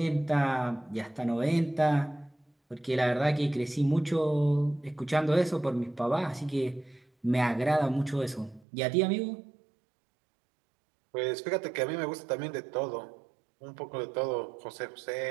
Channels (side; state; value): left; drops out; at 8.7 s